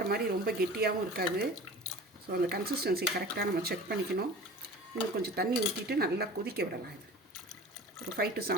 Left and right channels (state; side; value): normal; both; correlation 0.39